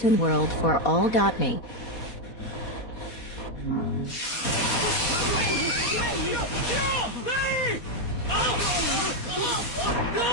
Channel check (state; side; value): late; right; 4.2 ms